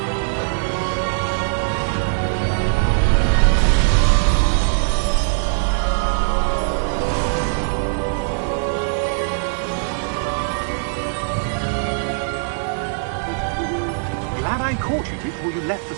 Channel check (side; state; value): left; silent; digital silence